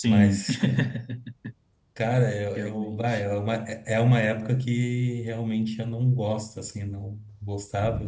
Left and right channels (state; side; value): identical; both; correlation 1.00